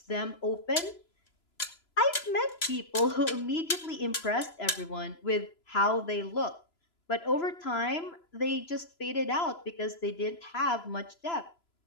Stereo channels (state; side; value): late; right; 3.0 ms